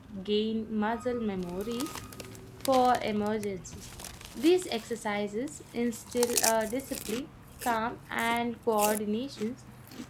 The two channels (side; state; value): both; identical; correlation 1.00